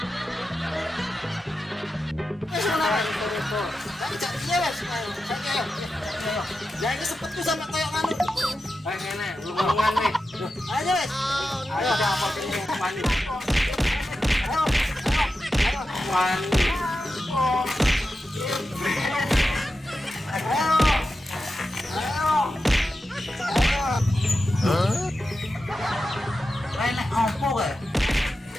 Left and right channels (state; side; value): normal; both; correlation 0.91